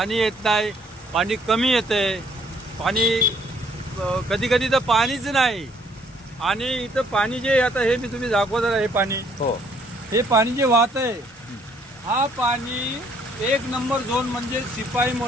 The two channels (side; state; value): both; normal; correlation 0.64